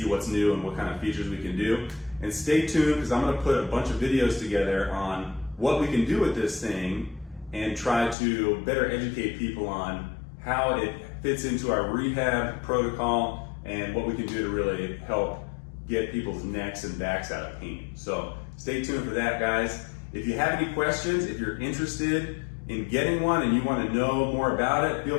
what's new and what kind of features we can do. And stay tuned, because I'm going to put a bunch of videos together on what we can do with this thing and try to better educate people on how it fits into our rehab protocol and what we can do to really help get people's necks and backs out of pain. So stay tuned for that, guys. If you have any questions, if you're interested in getting one and you want to know more about it,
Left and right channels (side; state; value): right; drops out; at 8.2 s